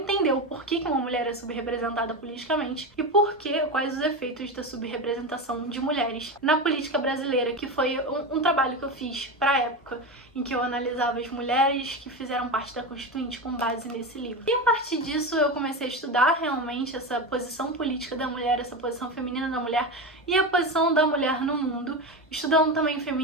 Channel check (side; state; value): both; normal; correlation 0.20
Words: o porquê que uma mulher é subrepresentada politicamente e quais os efeitos da subrepresentação de mulheres na política brasileira, que foi um trabalho que eu fiz pra época em que eu analisava as mulheres que fizeram parte da Constituinte com base nesse livro. E a partir disso eu comecei a estudar realmente essa posição política da mulher, essa posição feminina da mulher e a posição da mulher no mundo, estudando também